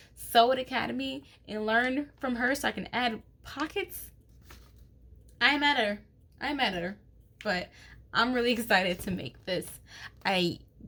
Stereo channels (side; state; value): both; identical; correlation 1.00